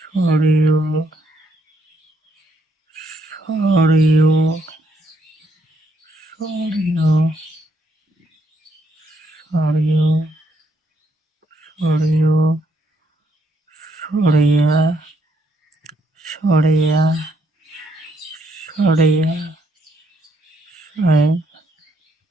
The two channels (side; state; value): both; normal; correlation 0.73